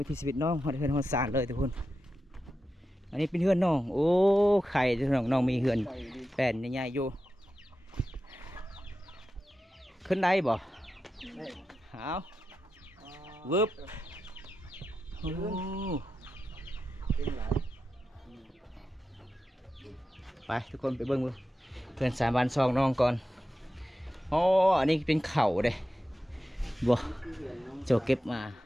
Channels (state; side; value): normal; both; correlation 0.91